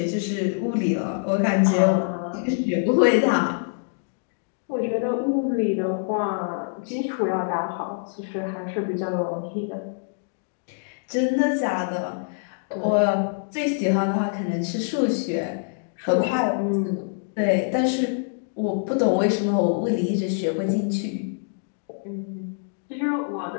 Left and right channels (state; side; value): silent; right; digital silence